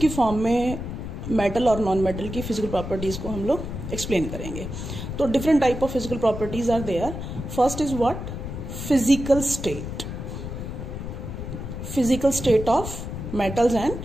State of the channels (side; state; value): left; noise; rumble, 7 dB below the sound